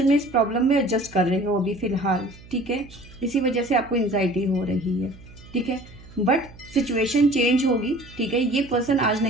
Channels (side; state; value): right; noise; hum, 20 dB below the sound